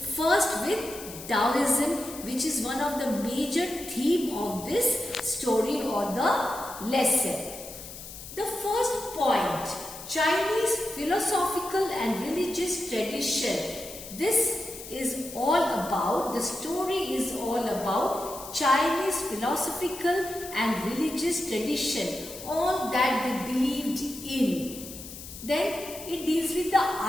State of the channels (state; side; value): noise; left; hiss, 13 dB below the sound